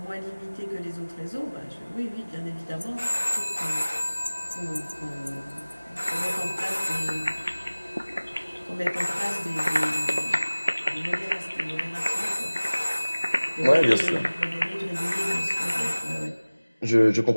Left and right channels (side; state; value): both; inverted; correlation -1.00